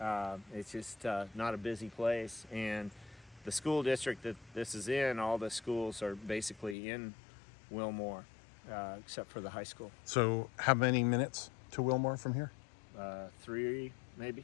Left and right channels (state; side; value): drops out; right; at 6.8 s